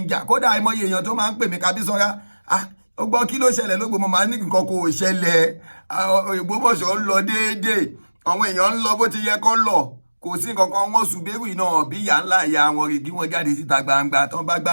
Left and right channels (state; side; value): inverted; both; correlation -1.00